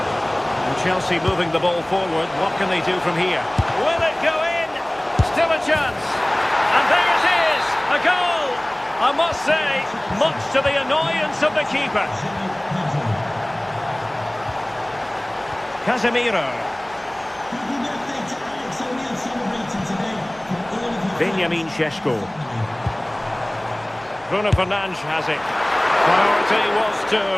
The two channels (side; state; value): right; noise; hum, 27 dB below the sound